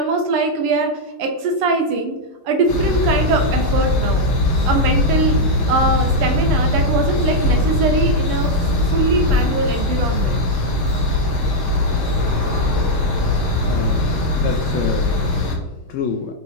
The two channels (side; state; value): left; late; 9.0 ms